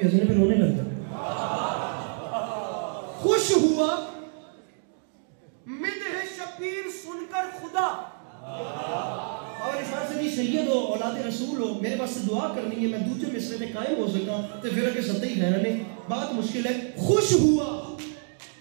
ہنسنے پہ رونے لگ جائے. خوش ہوا مدح شبیر سن کر خدا. اور اس بات سے سید ہو, اولاد رسول ہو, میرے پاس سے دعا کرنی ہے میں دوسرے مصرے میں قائم ہو سکا تو پھر کہ سطحی خیرانے بات مشکل ہے. خوش ہوا,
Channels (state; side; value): silent; left; 60 dB below the other